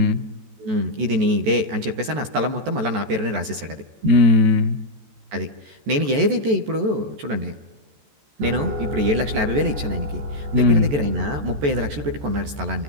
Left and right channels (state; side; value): late; left; 14 ms